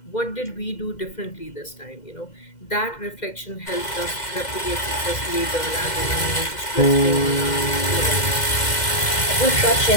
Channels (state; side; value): late; right; 2.1 ms